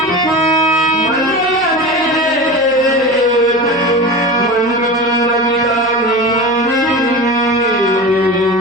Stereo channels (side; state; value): right; noise; hum, 26 dB below the sound